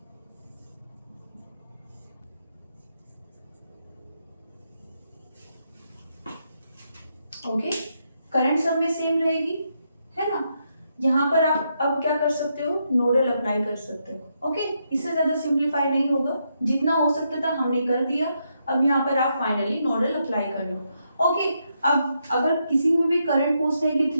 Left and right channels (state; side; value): inverted; both; correlation -0.80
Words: ओके। करंट सब में सेम रहेगी, है ना। यहाँ पर आप अब क्या कर सकते हो, नोडल अप्लाई कर सकते हो, ओके। इससे ज्यादा सिंप्लीफाई नहीं होगा, जितना हो सकता था हमने कर दिया। अब यहाँ पर आप फाइनली नोडल अप्लाई कर लो, ओके। अब अगर किसी में भी करंट पूछते हैं कि